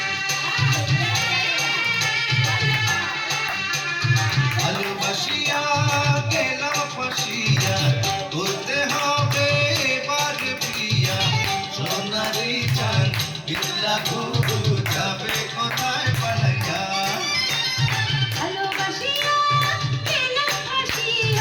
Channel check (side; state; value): both; identical; correlation 1.00